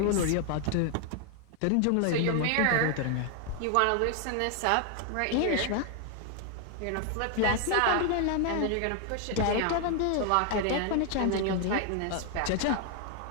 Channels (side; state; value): both; different; correlation 0.00